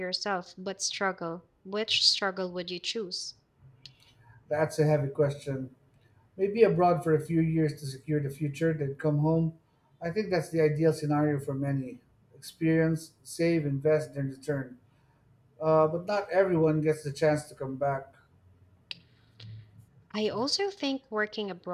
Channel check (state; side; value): identical; both; correlation 1.00